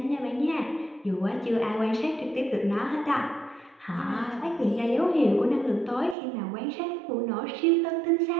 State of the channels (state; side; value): drops out; left; at 6.2 s